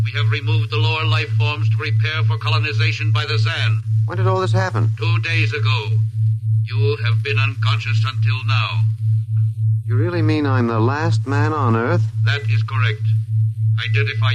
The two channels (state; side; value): identical; both; correlation 1.00